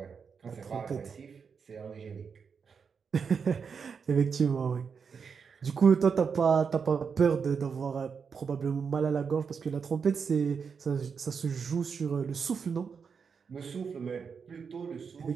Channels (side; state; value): left; quieter; 6.0 dB